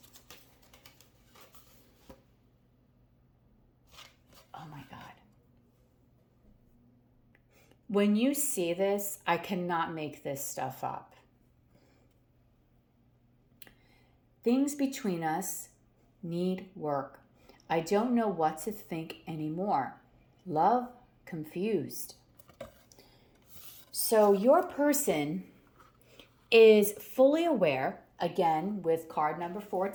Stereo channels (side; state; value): both; identical; correlation 1.00